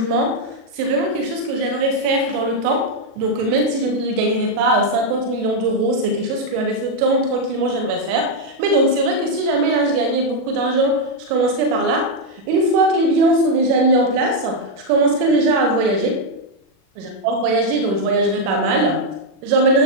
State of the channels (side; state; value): left; late; 37 ms